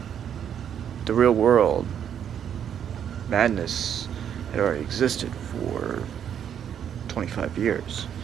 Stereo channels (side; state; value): left; quieter; 8.9 dB